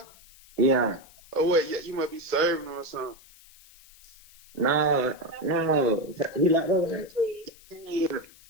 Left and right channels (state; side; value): noise; left; hiss, 24 dB below the sound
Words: Yeah. Oh, wait, yeah, you might be serving him or something. No. He like that. Yeah.